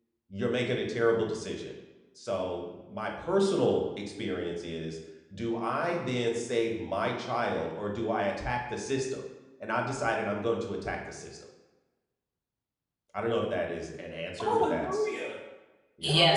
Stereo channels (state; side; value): identical; both; correlation 1.00